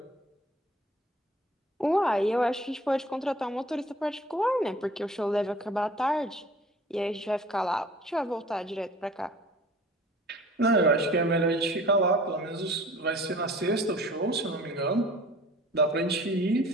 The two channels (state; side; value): normal; both; correlation 0.48